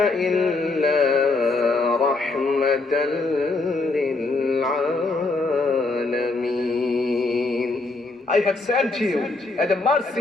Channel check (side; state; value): right; quieter; 3.5 dB